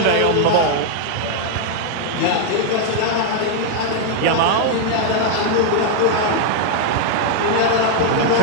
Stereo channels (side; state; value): both; different; correlation 0.00